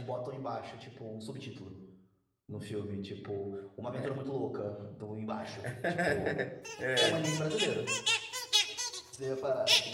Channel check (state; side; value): identical; both; correlation 1.00